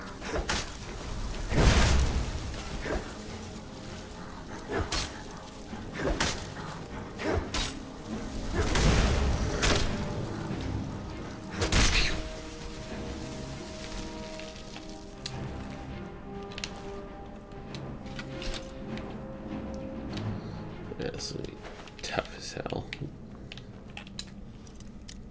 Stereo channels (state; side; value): identical; both; correlation 1.00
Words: That's tough as hell.